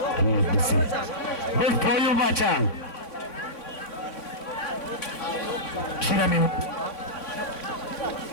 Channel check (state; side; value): late; right; 3.6 ms